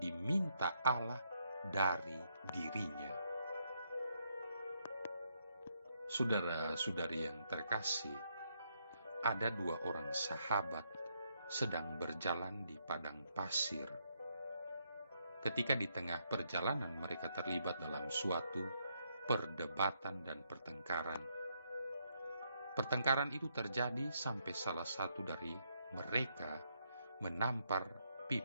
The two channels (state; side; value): inverted; both; correlation -0.76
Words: Allah dari dirinya. Saudara-saudari yang terkasih, ada dua orang sahabat sedang berjalan di padang pasir. Ketika di tengah perjalanan mereka terlibat dalam suatu perdebatan dan pertengkaran. Pertengkaran itu terjadi sampai salah satu dari mereka menampar